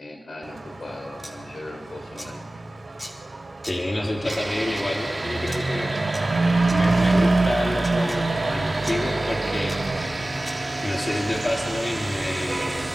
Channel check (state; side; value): normal; both; correlation 0.97